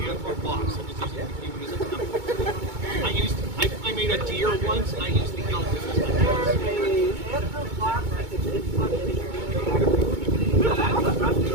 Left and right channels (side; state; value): left; late; 2.2 ms